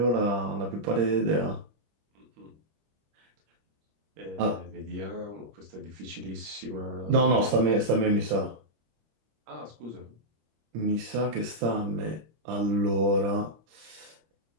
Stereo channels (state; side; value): late; left; 25 ms